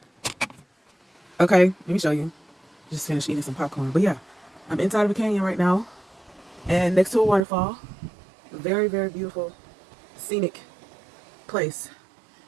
Okay, let me show you. Just finished eating some popcorn. But yeah, I'm inside of a canyon right now, and next to a waterfall. A very, very beautiful, scenic place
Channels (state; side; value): drops out; left; at 7.5 s